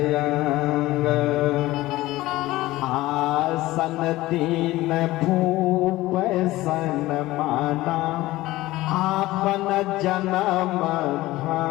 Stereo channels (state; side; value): quieter; right; 17.6 dB